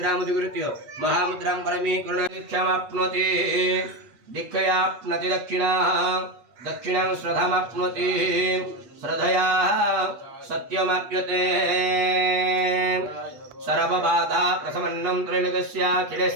महामुद्रां परमीकरणदीक्षामाप्नोति दीक्षयाप्नोति दक्षिणां श्रद्धामाप्नोति श्रद्धया सत्यमाप्यते सर्वबाधा प्रशमनं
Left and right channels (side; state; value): left; late; 8.3 ms